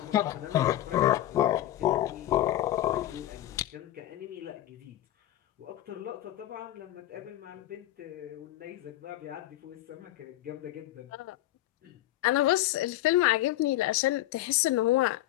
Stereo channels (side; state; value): right; quieter; 14.5 dB